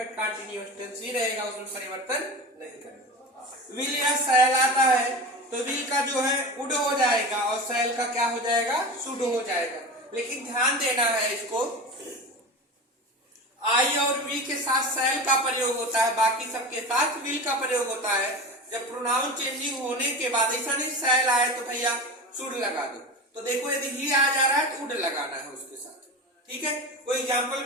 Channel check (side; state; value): both; normal; correlation 0.28